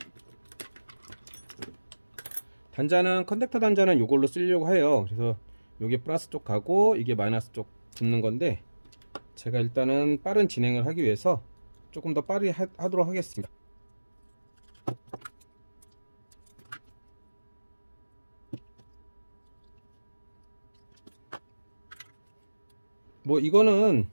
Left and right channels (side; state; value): both; inverted; correlation -1.00